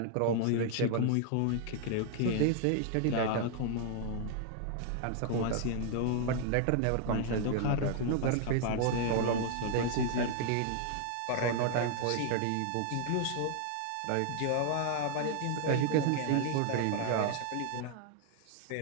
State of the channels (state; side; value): different; both; correlation 0.00